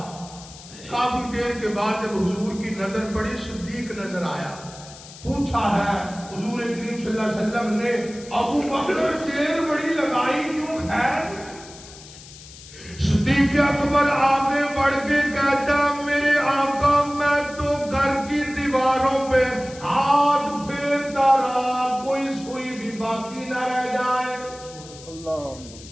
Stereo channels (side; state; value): left; noise; hiss, 18 dB below the sound